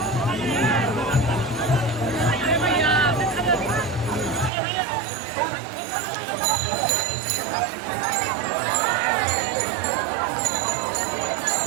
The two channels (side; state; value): left; drops out; at 4.5 s